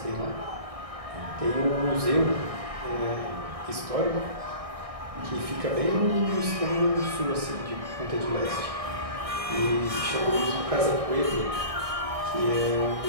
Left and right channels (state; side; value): late; left; 1.6 ms